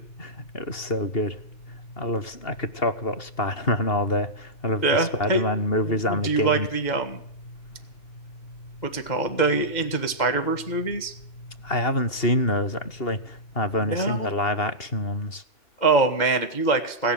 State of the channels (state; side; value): late; right; 2.8 ms